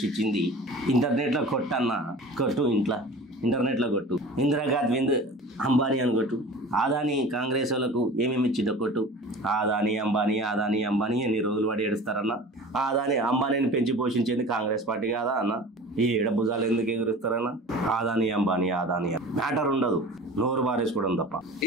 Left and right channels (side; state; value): both; normal; correlation 0.39